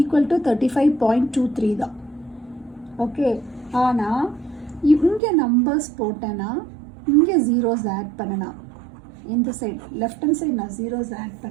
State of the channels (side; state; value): left; drops out; at 5.2 s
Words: டு 35.23 தான். ஓகே. ஆனால் இங்கே நம்பர்ஸ் போட்டேன்னா இங்கே ஜீரோஸ் ஆட் பண்ணனா, இந்த சைடு லெஃப்ட் ஹேண்ட் சைடு நான் ஜீரோஸ் ஆட்